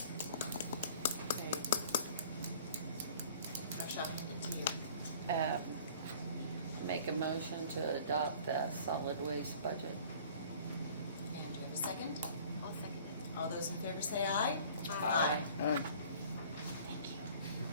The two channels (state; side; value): inverted; both; correlation -0.49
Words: Josh, I'll hand it to you. Make a motion to adopt the solid waste budget. And do you have a second? I'll second it. All those in favor say aye. Aye. Thank